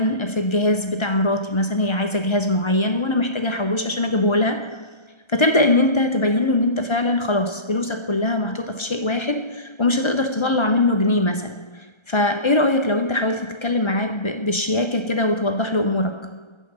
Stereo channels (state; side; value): late; right; 1.3 ms